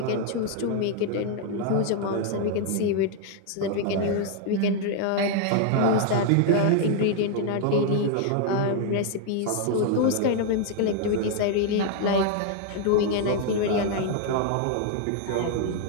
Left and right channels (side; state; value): both; different; correlation 0.00